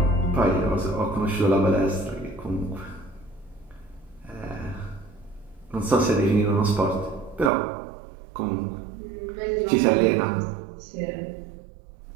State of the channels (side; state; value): left; drops out; at 7.5 s